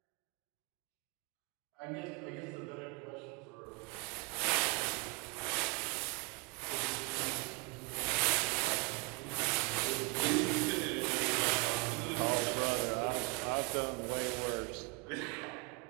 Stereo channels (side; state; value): left; quieter; 28.8 dB